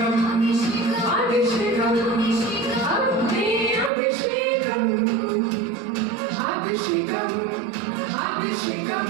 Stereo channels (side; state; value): left; drops out; at 3.9 s